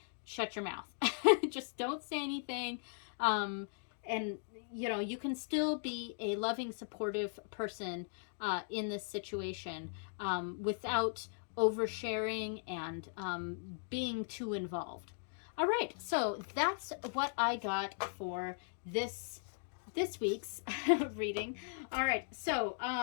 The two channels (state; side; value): silent; right; digital silence